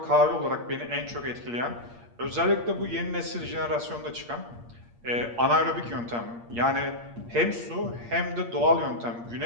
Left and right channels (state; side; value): late; left; 8.6 ms